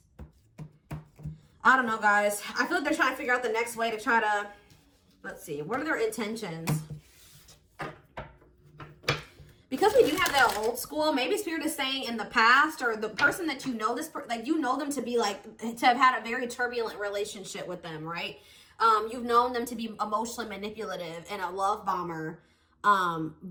I don't know, guys. I feel like they're trying to figure out the next way to try to, let's see, what are their intentions? Because we do have that old school, maybe spirit is saying in the past, or the person that you know, like you know them to be like, to have had a very turbulent relationship with them, right? You've known them to be emotionally manipulative and a love bomber.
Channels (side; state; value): both; identical; correlation 1.00